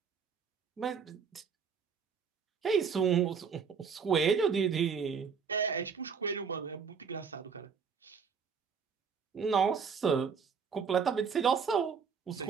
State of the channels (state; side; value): quieter; left; 6.2 dB